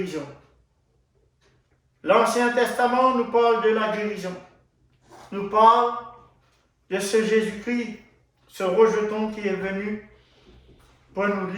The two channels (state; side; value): identical; both; correlation 1.00